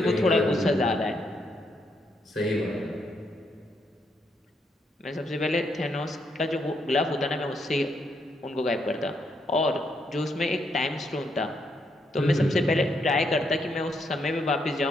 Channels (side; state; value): both; normal; correlation 0.77